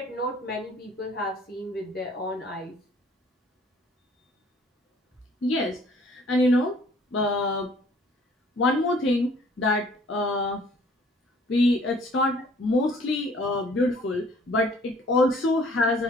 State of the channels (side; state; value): both; normal; correlation 0.56